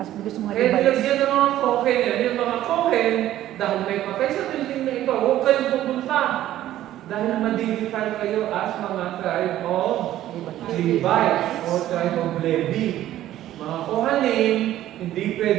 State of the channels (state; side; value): quieter; left; 13.3 dB